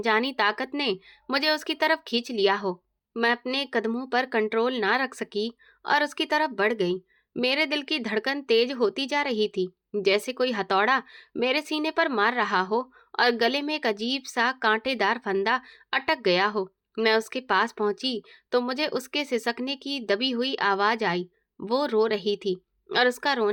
ताकत ने मुझे उसकी तरफ खींच लिया हो। मैं अपने कदमों पर कंट्रोल ना रख सकी और उसकी तरफ बढ़ गई। मेरे दिल की धड़कन तेज होती जा रही थी, जैसे कोई हथौड़ा मेरे सीने पर मार रहा हो और गले में एक अजीब सा कांटेदार फंदा अटक गया हो। मैं उसके पास पहुंची तो मुझे उसके सिसकने की दबी हुई आवाज आई। वो रो रही थी और उसका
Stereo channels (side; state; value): both; identical; correlation 1.00